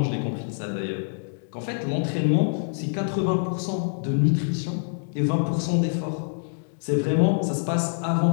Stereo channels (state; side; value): silent; right; digital silence